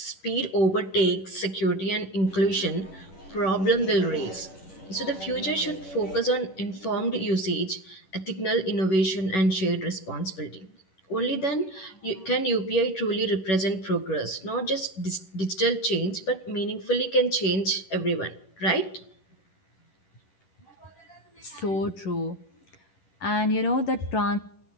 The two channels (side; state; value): right; late; 11 ms